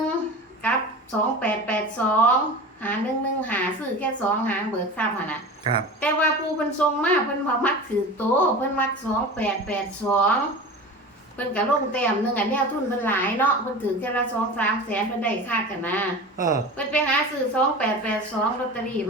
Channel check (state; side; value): normal; both; correlation 0.33